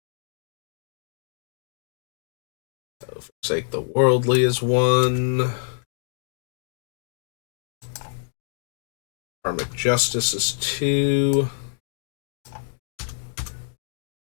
So, Forsake the Worldly is one. Karmic Justice is two.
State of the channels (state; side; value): silent; right; digital silence